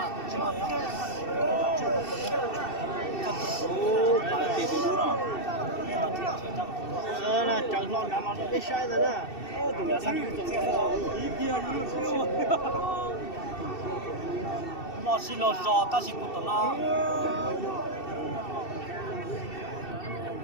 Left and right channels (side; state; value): right; late; 2.7 ms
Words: Ô, phải tiền từ đúng không? Nè, chẳng lo nằm ở cái sai rồi nè. Tụi nó sang tụi nó ý kia luôn. Mà xin lo giò ta xin tụi nó.